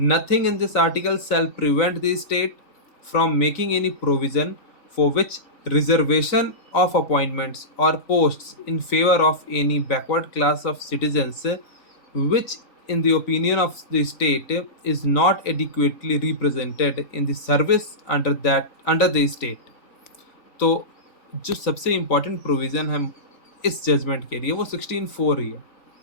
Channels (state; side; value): late; right; 3.9 ms